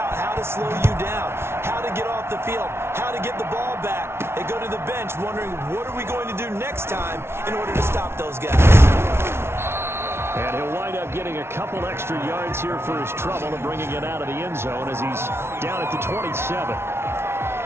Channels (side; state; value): left; late; 0.12 ms